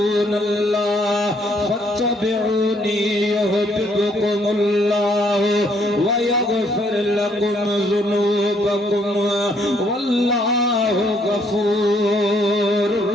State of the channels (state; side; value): normal; both; correlation 0.68